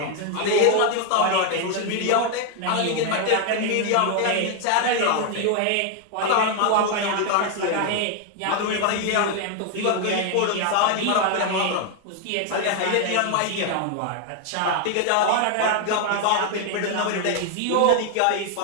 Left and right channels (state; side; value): different; both; correlation 0.00